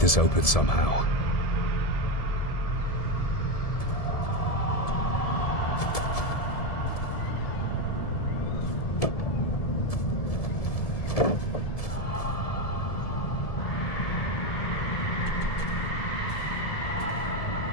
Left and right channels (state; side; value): late; right; 1.7 ms